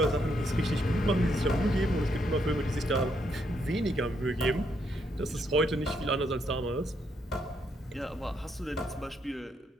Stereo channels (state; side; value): normal; both; correlation 0.76